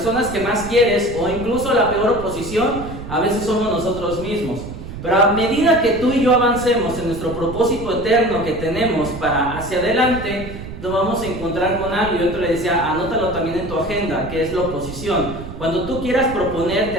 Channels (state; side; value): noise; right; rumble, 11 dB below the sound